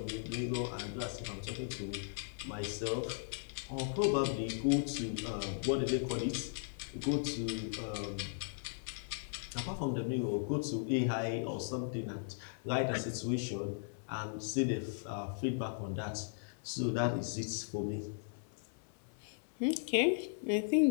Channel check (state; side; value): silent; right; 53 dB below the other